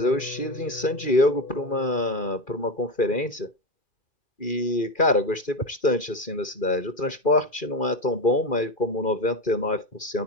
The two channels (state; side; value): late; right; 2.4 ms